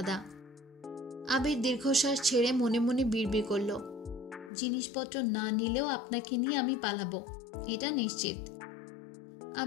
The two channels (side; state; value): right; drops out; at 4.5 s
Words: আবির দীর্ঘশ্বাস ছেড়ে মনে মনে বিড়বিড় করল, জিনিসপত্র না নিলেও আপনাকে নিয়ে আমি পালাবো, এটা নিশ্চিত।